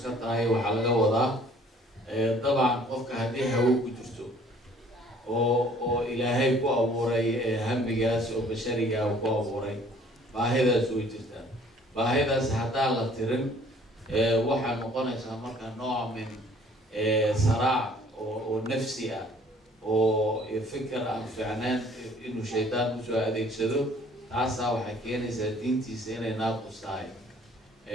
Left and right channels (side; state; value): both; normal; correlation 0.56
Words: ka tahay waxa laga wadaa dabcan qofka hadii hawo ku jirto oo ilaahay ku abuuray hamigaas oo bashariga ku abuuray baahidaas way jirtaa baahidaas hadaa la tirin waxa noqonaysa marka nooc min saraac oo nafsi ah oo fikir aan fiicnaan inuu shaydaan u soo adeegsado taas waxay keenaysaa diintiisa inay naaqus tahay